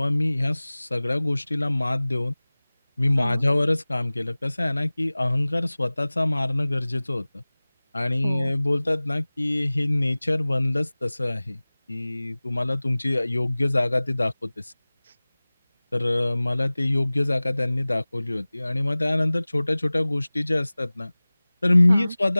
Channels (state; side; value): inverted; both; correlation -0.99